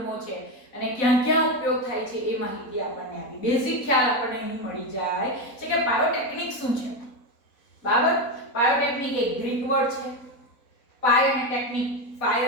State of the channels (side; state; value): right; late; 4.0 ms